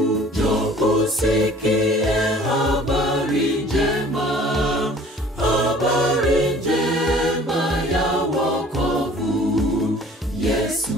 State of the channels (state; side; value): normal; both; correlation 0.50